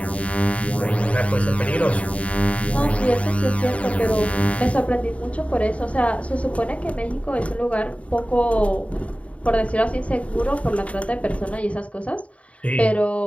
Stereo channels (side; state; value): right; late; 0.065 ms